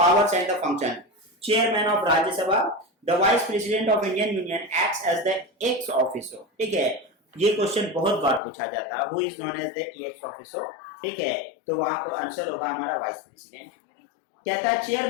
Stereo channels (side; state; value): right; drops out; at 8.4 s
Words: and the function, chairman of Rajya Sabha, the vice president of Indian union acts as the ex officer, ठीक है, ये क्वेश्चन बहुत बार पूछा जाता है, who is known as the ex officer, ठीक है, तो वहां को आंसर होगा हमारा वाइस प्रेसिडेंट। कहता है